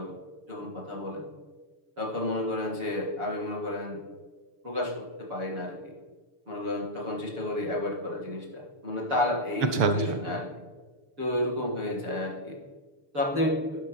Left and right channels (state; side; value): late; left; 6.8 ms